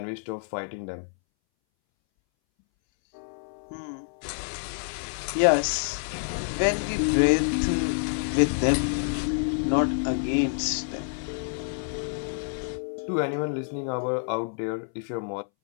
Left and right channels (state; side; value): silent; right; 60 dB below the other